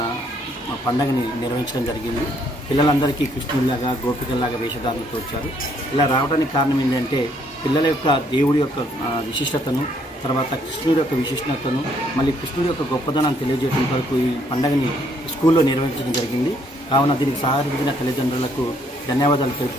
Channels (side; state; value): both; normal; correlation 0.68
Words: పండుగని నిర్వహించడం జరిగింది. పిల్లలందరికీ కృష్ణుడిలాగా గోపికల్లాగా వేషధారణతో వచ్చారు. ఇలా రావడానికి కారణం ఏంటంటే పిల్లల యొక్క దేవుడి యొక్క విశిష్టతను, తర్వాత కృష్ణుడి యొక్క విశిష్టతను, మళ్ళీ కృష్ణుడి యొక్క గొప్పదనాన్ని తెలియజేయడం కొరకు ఈ పండుగని స్కూల్లో నిర్వహించడం జరిగింది. కావున దీనికి సహకరించిన తల్లిదండ్రులకు ధన్యవాదాలు